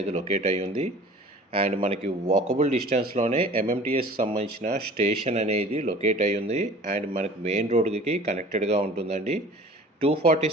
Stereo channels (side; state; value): both; normal; correlation 0.45